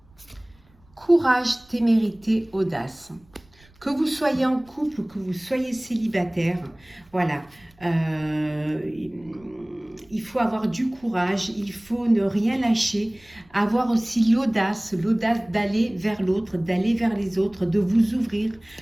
courage, témérité, audace. Que vous soyez en couple ou que vous soyez célibataire, voilà. il faut avoir du courage, il faut ne rien lâcher, avoir aussi l'audace d'aller vers l'autre, d'aller vers les autres, de vous ouvrir,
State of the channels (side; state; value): right; noise; rumble, 29 dB below the sound